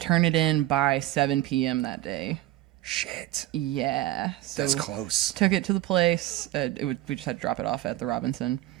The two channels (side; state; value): left; quieter; 15.2 dB